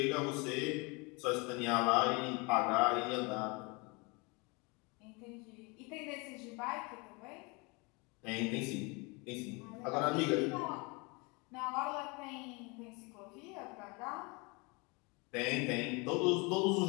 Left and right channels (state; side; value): quieter; right; 28.7 dB